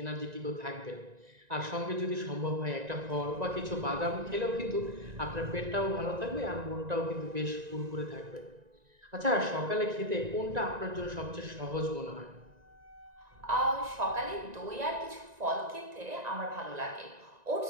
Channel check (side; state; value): left; late; 1.9 ms